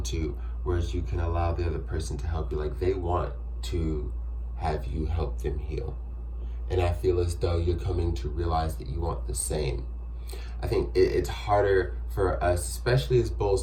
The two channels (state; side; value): identical; both; correlation 1.00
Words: to, whereas you can allow the other person to help you. Like, they want to have you help them heal. And I feel as though you're coming to realize that you want the same. I think it's harder for us, especially as